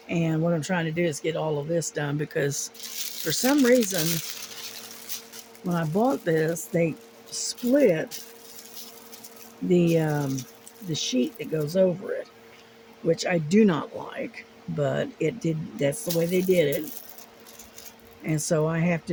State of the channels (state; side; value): identical; both; correlation 1.00